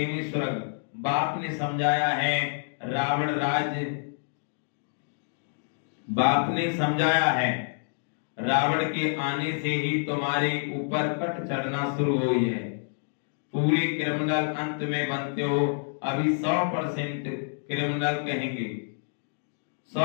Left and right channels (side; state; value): right; silent; digital silence